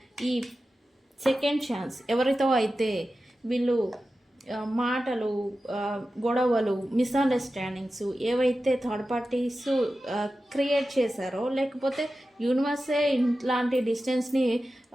ఈ సెకండ్ ఛాన్స్ ఎవరితో అయితే వీళ్ళు మాటలు, గొడవలు, మిస్అండర్స్టాండింగ్స్ ఏవైతే థర్డ్ పార్టీస్ క్రియేట్ చేశారో, లేకపోతే యూనివర్సే ఇలాంటి డిస్టెన్స్ని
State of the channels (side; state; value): both; normal; correlation 0.93